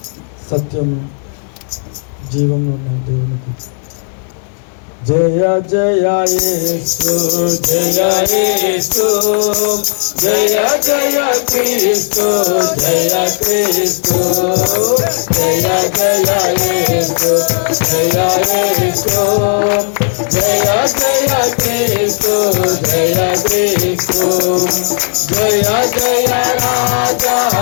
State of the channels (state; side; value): silent; right; digital silence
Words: సత్యం, జీవం దేవునికి. జయ జయ యేసు, జయ యేసు, జయ జయ క్రీస్తు, జయ క్రీస్తు, జయ జయ యేసు, జయ యేసు, జయ జయ క్రీస్తు, జయ క్రీస్తు, జయ జయ రాజా,